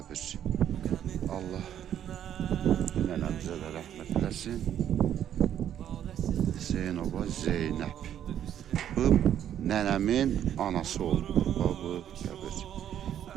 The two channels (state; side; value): quieter; left; 10.3 dB